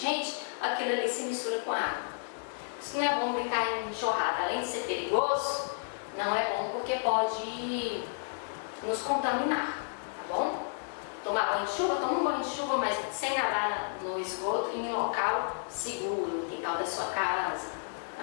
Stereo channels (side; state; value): right; silent; 57 dB below the other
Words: aquilo ali se mistura com a água. Isso não é bom brincar em enxurrada, além de ser perigoso, não é bom porque pode nos contaminar, tá bom? Tomar banho de chuva, toma um banho de chuva, mas sem nadar no esgoto e em um local seguro, no quintal da sua casa, na